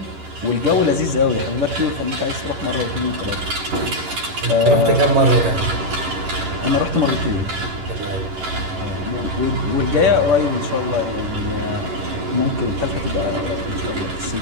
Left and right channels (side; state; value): left; late; 11 ms